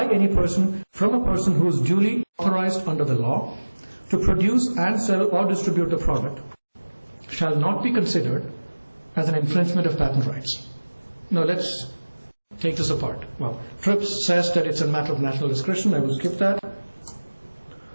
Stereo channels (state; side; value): inverted; both; correlation -1.00